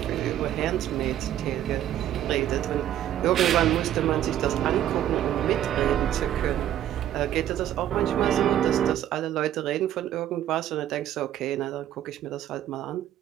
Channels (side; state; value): left; quieter; 11.7 dB